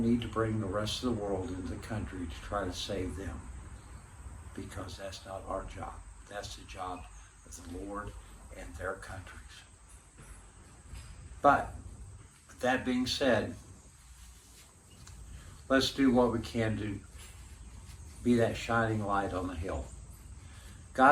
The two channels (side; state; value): both; identical; correlation 1.00